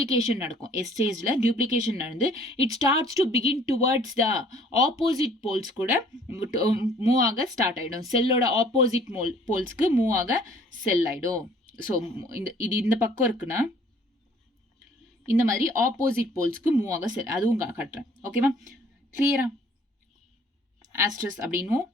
நடக்கும். ஸ்டேஜில் டியூப்ளிகேஷன் நடந்து it starts to begin towards the opposite poles கூட மூவ் ஆக ஸ்டார்ட் ஆகிடும். செல்லோட ஆப்போசிட் போல்ஸ்க்கு மூவ் ஆக செல் ஆகிடும். ஸோ இது இந்த பக்கம் இருக்குன்னா இந்த மாதிரி ஆப்போசிட் போல்ஸ்க்கு மூவ் ஆக செல், அதுவும் காட்டுறேன். ஓகேவா? கிளியரா? Asters அப்படின்னும்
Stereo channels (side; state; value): both; normal; correlation 0.56